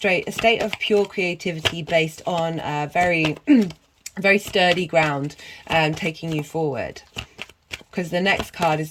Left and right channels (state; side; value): identical; both; correlation 1.00